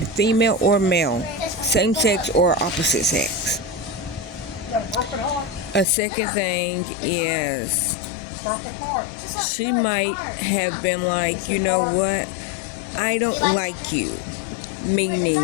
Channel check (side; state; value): right; drops out; at 5.9 s